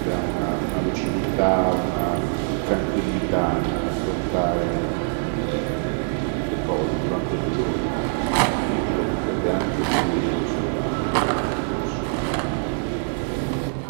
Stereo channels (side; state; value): left; silent; 63 dB below the other